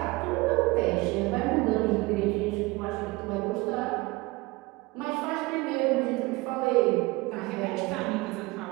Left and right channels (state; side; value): quieter; left; 22.9 dB